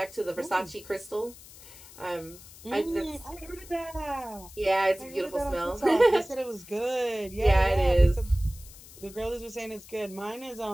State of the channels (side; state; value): left; noise; hiss, 19 dB below the sound